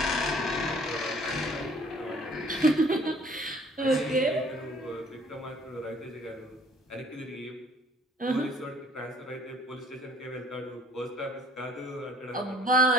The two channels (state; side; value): normal; both; correlation 0.56